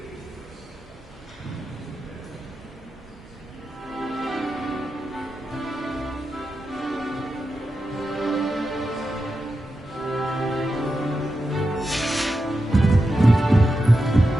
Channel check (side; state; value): both; normal; correlation 0.89